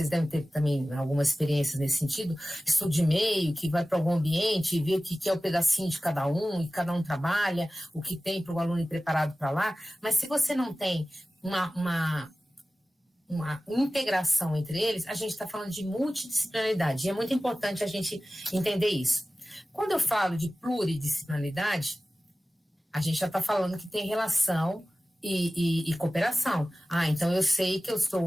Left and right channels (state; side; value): normal; both; correlation 0.96